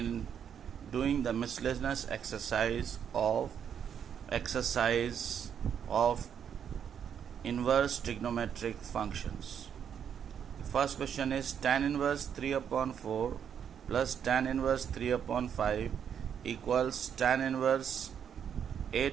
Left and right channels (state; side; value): quieter; left; 8.3 dB